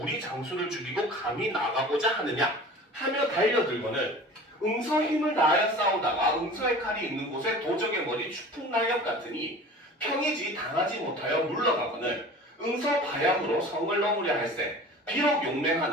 우리 장수를 죽이고 감히 나가고자 하느냐 하며 달려들거늘 응서 힘을 다하여 싸우다가 응서의 칼이 있는 곳에 도적의 머리 추풍날렵 같으니 평이지 당하지 못하여 물러가거늘 응서 바양으로 성을 넘으려 할세 비록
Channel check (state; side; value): normal; both; correlation 0.40